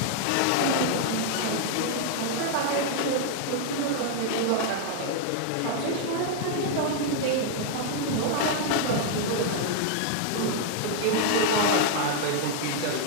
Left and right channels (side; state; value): both; different; correlation 0.00